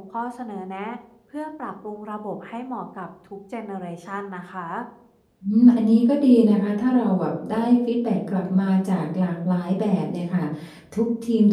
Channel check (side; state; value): both; identical; correlation 1.00